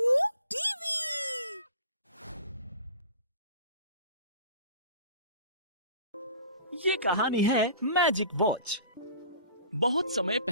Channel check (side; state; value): both; inverted; correlation -0.44